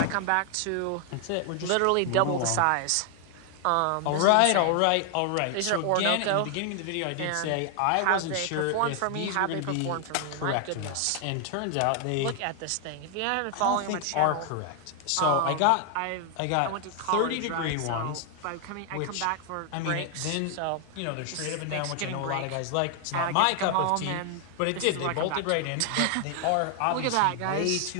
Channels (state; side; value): different; both; correlation 0.00